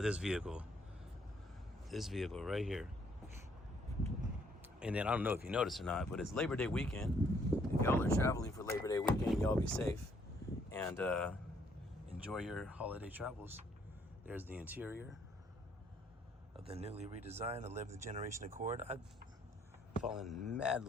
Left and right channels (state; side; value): normal; both; correlation 0.67